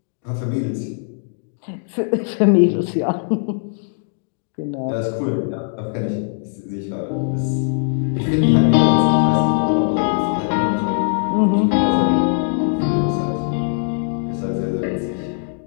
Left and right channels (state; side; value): silent; right; digital silence